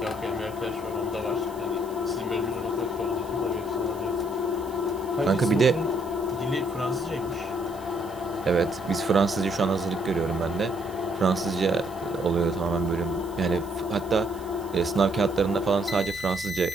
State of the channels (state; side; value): noise; right; hiss, 23 dB below the sound